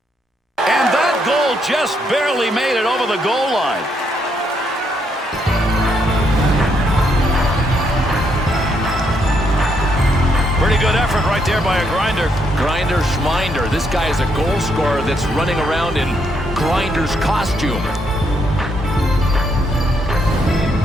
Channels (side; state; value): both; normal; correlation 0.75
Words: And that goal just barely made it over the goal line. Pretty good effort right there by a grinder. Grinder Schminder. This guy is a goal scorer that's running around in Grinder's costume.